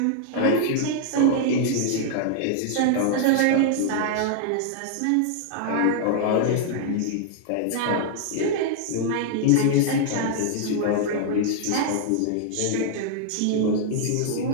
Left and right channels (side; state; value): both; different; correlation 0.00